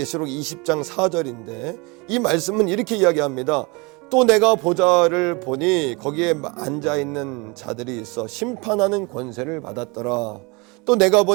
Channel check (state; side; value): quieter; left; 28.0 dB